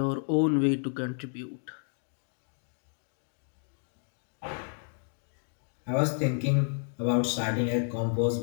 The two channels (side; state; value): right; silent; 55 dB below the other